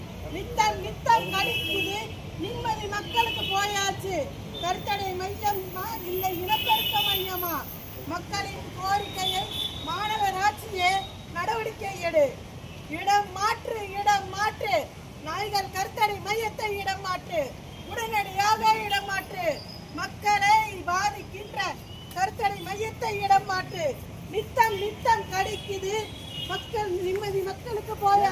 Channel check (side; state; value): both; identical; correlation 1.00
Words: நித்தம் கடிக்குது நிம்மதி மக்களுக்கு போயாச்சு. கருத்தடை மையமா இல்லை இனப்பெருக்க மையமா? மக்களின் கோரிக்கையை மாநகராட்சியே நடவடிக்கை எடு. இடம் மாற்று. நாய்கள் கருத்தடை மையத்தை இடம் மாற்று. உடனடியாக இடம் மாற்று. மக்களை பாதிக்கின்ற கருத்தடை மையத்தை இடம் மாற்று. நித்தம் கடிக்குது மக்கள் நிம்மதி மக்களுக்கு